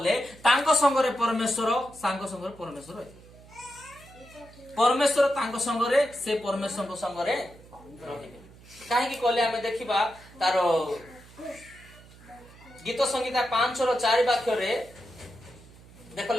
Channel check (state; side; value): noise; right; hum, 22 dB below the sound